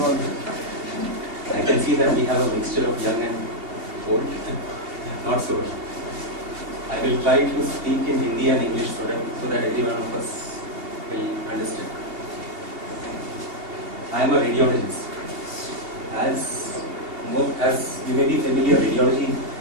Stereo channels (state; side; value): late; left; 2.7 ms